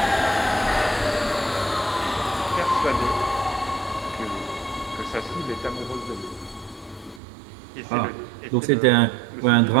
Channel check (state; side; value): drops out; left; at 7.2 s